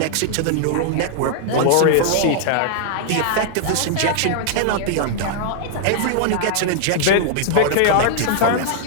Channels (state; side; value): different; both; correlation -0.01